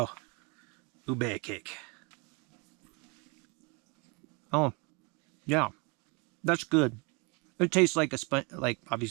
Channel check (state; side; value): quieter; left; 30.1 dB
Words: Ube cake. Oh, yeah, that's good. It tastes like a sponge, like